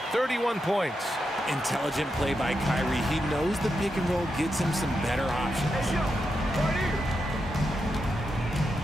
31 points. Intelligent play by Kyrie. He knows the pick and roll gets him some better options.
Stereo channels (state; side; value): normal; both; correlation 0.86